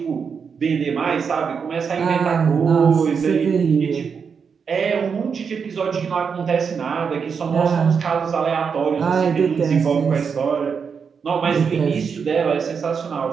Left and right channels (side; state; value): left; quieter; 6.1 dB